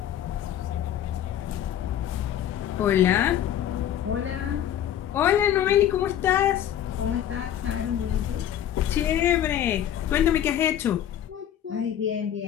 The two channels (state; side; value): quieter; right; 10.7 dB